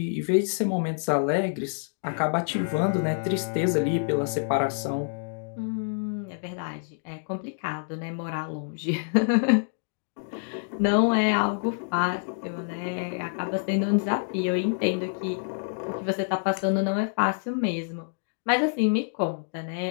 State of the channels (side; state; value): right; silent; digital silence